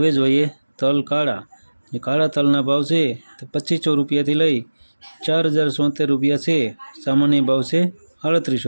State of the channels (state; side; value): inverted; both; correlation -1.00